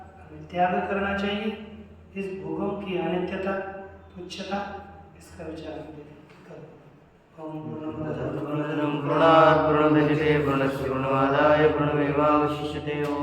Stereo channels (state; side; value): identical; both; correlation 1.00